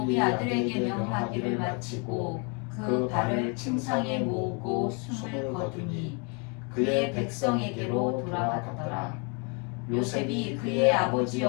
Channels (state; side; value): quieter; right; 35.0 dB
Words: 아들에게 명하기를 마치고 그 발을 침상에 모으고 숨을 거두니 그의 백성에게로 돌아가더라. 요셉이 그의 아버지